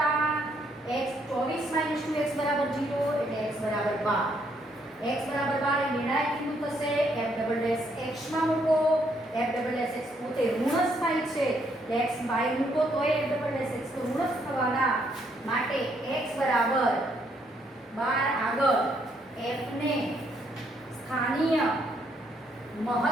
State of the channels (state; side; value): normal; both; correlation 0.72